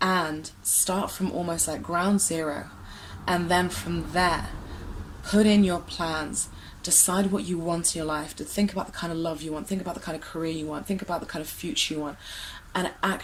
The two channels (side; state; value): both; identical; correlation 1.00